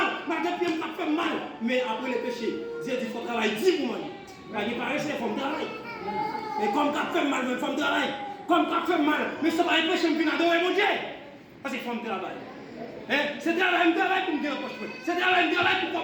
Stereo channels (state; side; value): identical; both; correlation 1.00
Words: malgré le pied m'a fait mal, mais après le péché, Dieu dit qu'il faut travailler 10 pour moi. Il paraît que c'est comme travail. Et comme tu as fait mal, il faut travailler. Comme tu as fait mal, mais ça va empêcher de venir adorer mon Dieu. Parce qu'il faut me travailler. C'est travail pour me dire c'est travail